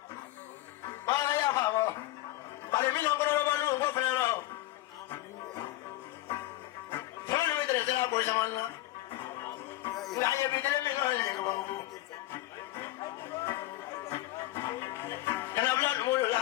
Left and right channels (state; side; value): quieter; right; 16.4 dB